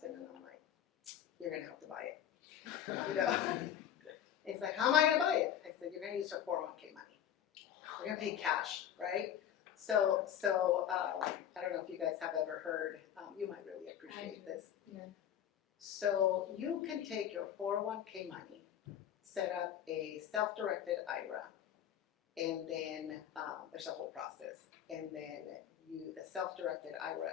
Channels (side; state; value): right; quieter; 10.0 dB